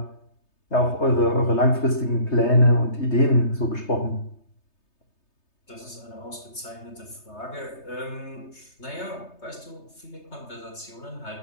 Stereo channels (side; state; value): right; late; 3.3 ms